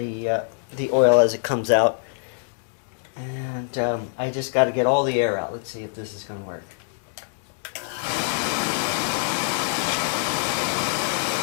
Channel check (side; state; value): right; silent; digital silence